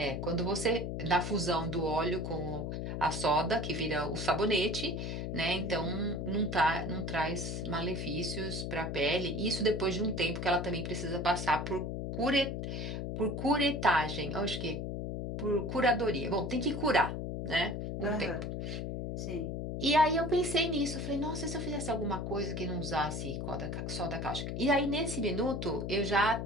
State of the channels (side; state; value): left; noise; hum, 3 dB below the sound